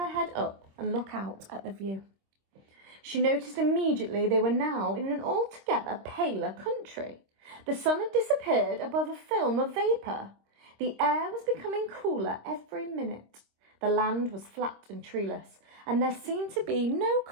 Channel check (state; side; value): late; left; 26 ms